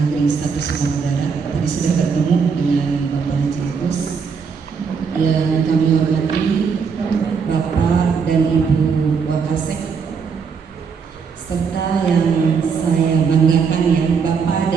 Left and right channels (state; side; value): quieter; left; 5.8 dB